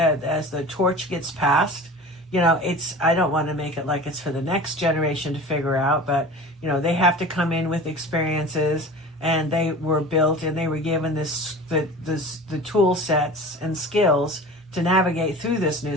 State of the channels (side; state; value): both; normal; correlation 0.37